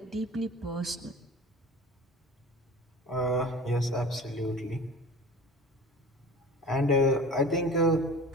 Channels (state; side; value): normal; both; correlation 0.39